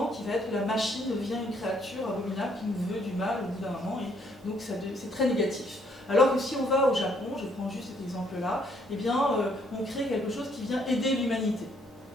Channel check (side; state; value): both; normal; correlation 0.67